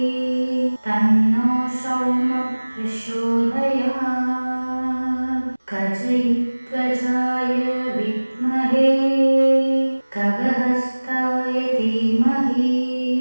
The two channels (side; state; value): both; inverted; correlation -1.00